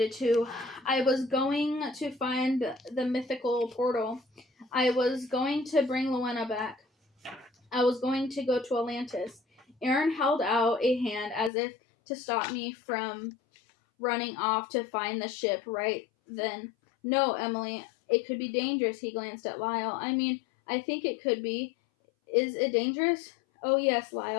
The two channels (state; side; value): drops out; right; at 11.5 s